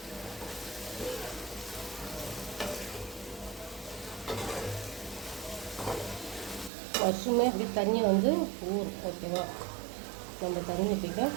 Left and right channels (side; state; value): left; drops out; at 6.7 s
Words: மஷ்ரூமே அப்படி தண்ணியை வந்து ஓகேவா, நம்ம தண்ணி ஊற்றிக்க